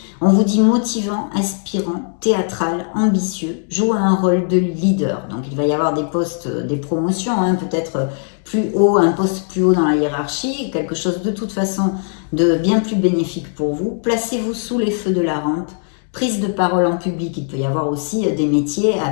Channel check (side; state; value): right; silent; digital silence